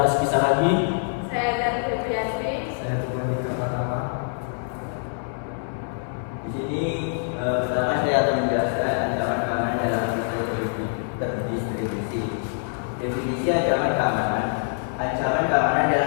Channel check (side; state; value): right; silent; 62 dB below the other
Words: Rizky Saragi. Saya Jan Febrianti. Saya Tuhan Pertama. Di sini pertama saya akan menjelaskan ancaman keamanan dalam sistem terdistribusi. Definisi ancaman keamanan. Ancaman keamanan